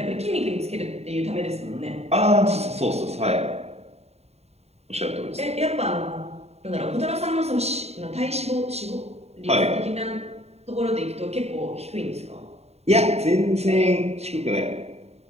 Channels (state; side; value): late; left; 0.31 ms